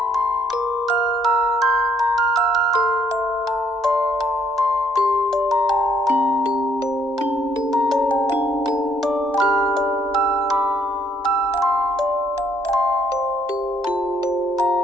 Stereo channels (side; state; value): both; normal; correlation 0.68